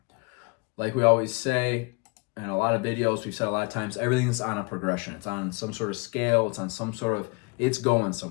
Like we always say in a lot of videos, we've said a lot of times, everything's on a progression. It's on some sort of scale. It's on some sort of, it's going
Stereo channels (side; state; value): right; quieter; 29.7 dB